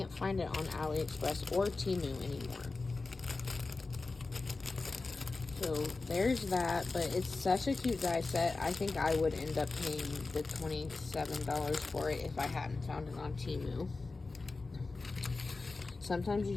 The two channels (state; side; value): quieter; right; 3.7 dB